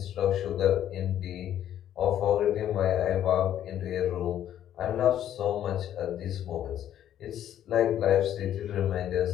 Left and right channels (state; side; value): quieter; right; 11.0 dB